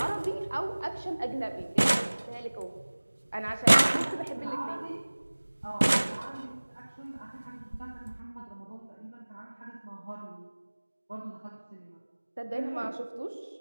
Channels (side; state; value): both; inverted; correlation -1.00